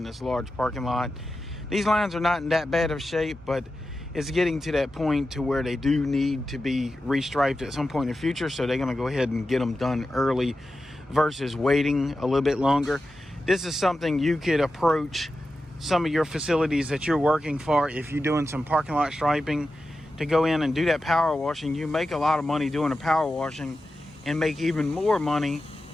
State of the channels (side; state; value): both; normal; correlation 0.92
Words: this large parking lot. These lines are not in that bad of shape, but it's getting to that point to where they do need to be restriped at some point in the future. So they're going to go ahead and get them done early versus waiting a little bit longer. This is something you could approach some of your facilities that you're working for. If you're doing some parking lot striping, to go in and do that power washing, you make a lot of money doing the power washing and make even more money